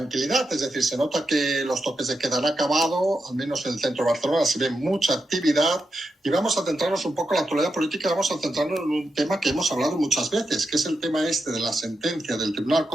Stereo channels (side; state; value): both; normal; correlation 0.87